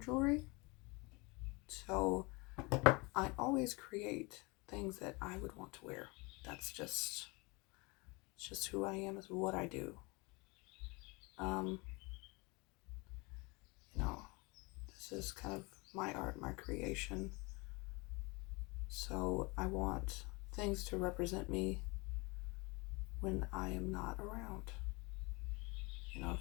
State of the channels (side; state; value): right; quieter; 26.9 dB